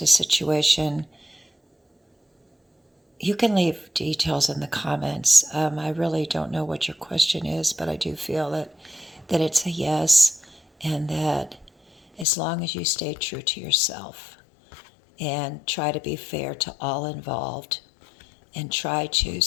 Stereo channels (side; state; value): right; drops out; at 12.2 s